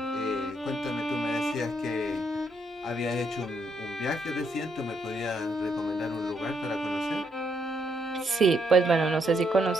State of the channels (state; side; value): normal; both; correlation 0.75